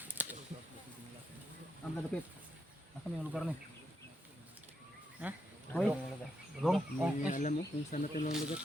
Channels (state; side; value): normal; both; correlation 0.80